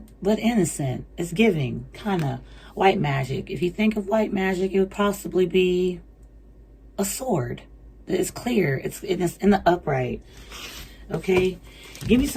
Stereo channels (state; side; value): identical; both; correlation 1.00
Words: but innocent. It's giving, kind of. White magic. If you think of white magic, it would possibly be a sword. It's clear. It's in the upright. Okay? Give me